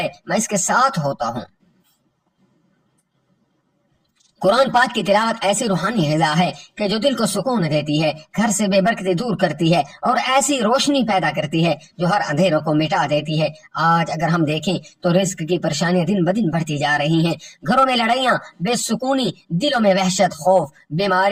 میں اس کے ساتھ ہوتا ہوں۔ قرآن پاک کی تلاوت ایسی روحانی غذا ہے کہ جو دل کو سکون دیتی ہے، گھر سے بے برکتی دور کرتی ہے اور ایسی روشنی پیدا کرتی ہے جو ہر اندھیروں کو مٹا دیتی ہے۔ آج اگر ہم دیکھیں تو رزق کی پریشانیاں دن بدن بڑھتی جا رہی ہیں، گھروں میں لڑائیاں، بے سکونی، دلوں میں وحشت، خوف،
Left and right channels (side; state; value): both; identical; correlation 1.00